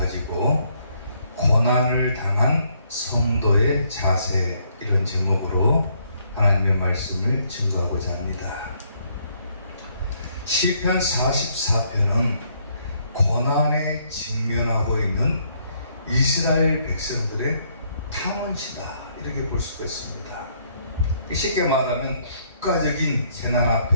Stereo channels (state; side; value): inverted; both; correlation -0.69